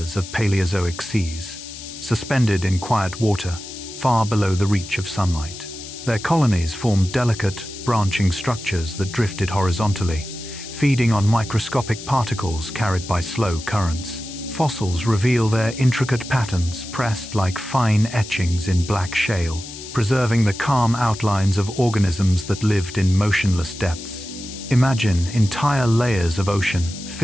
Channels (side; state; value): left; noise; hiss, 13 dB below the sound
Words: of Paleozoic seas, suspended in quiet water, far below the reach of sunlight. Their colonies formed delicate, branching structures that drifted horizontally, feeding on microscopic particles carried by slow currents. Fossils reveal their intricate patterns pressed like fine etchings in black shale, preserving the calm outlines of organisms that lived in motionless depths. Imagine entire layers of ocean